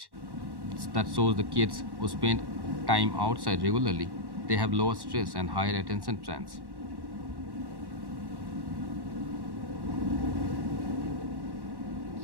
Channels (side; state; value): left; late; 1.1 ms